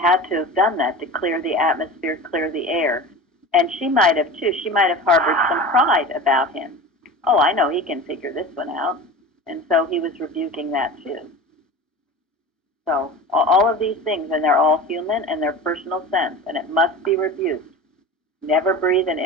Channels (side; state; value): both; normal; correlation 0.32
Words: to have done that to clear the atmosphere, clear the air. And she might have, too. She might have harbored some pride about him. Oh, I know he can figure this one out. And so he was rebuking that, too. So all of these things, and they're all human and they're personal sense, and it must be rebuked. Never breathe an